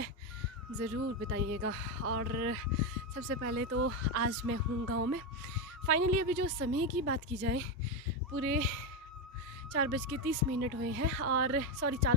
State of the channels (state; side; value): normal; both; correlation 0.10